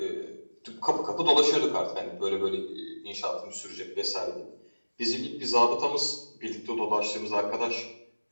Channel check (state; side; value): inverted; both; correlation -1.00